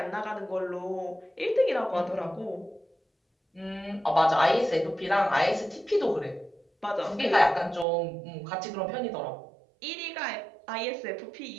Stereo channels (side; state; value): left; drops out; at 7.9 s